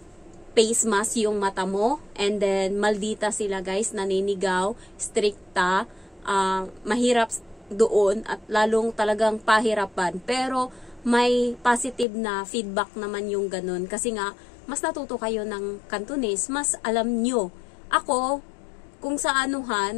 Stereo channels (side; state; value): right; drops out; at 12.1 s